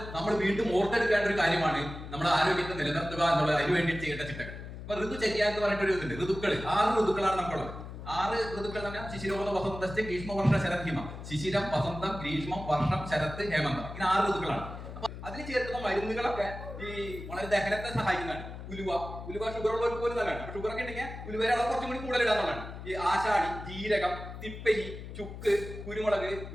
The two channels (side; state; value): left; noise; hum, 11 dB below the sound